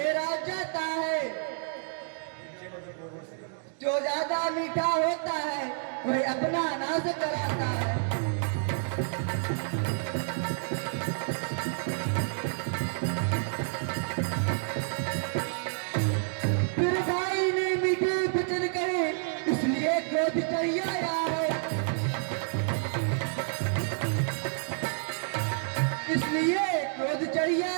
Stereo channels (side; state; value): left; silent; digital silence